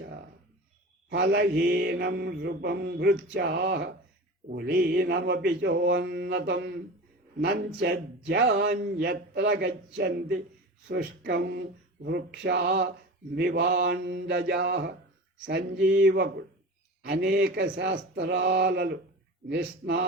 ఫలహీనం నృపం భృత్యాః కులీనమపి చోన్నతం నంచజ్యాన్యత్ర గచ్చంతి శుష్కం వృక్షా మివాండజాః. సంజీవకుడు అనేక శాస్త్రాలలో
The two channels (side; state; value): both; normal; correlation 0.32